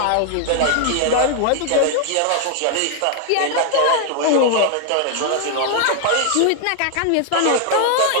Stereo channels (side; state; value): both; different; correlation 0.00